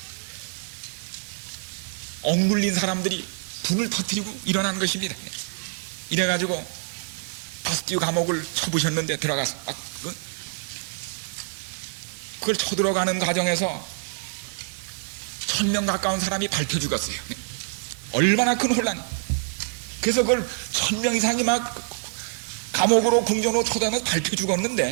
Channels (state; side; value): silent; left; digital silence